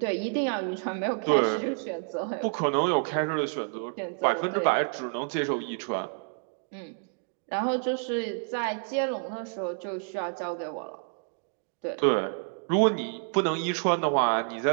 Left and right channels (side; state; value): left; silent; 59 dB below the other